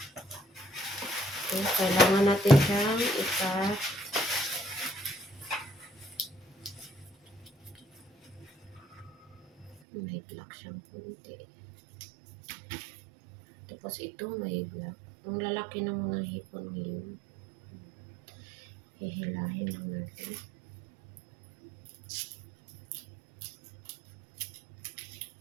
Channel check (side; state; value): left; drops out; at 9.8 s